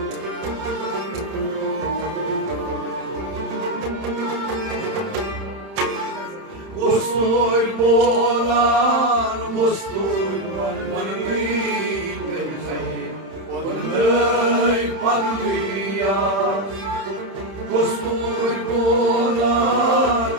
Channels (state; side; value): late; left; 31 ms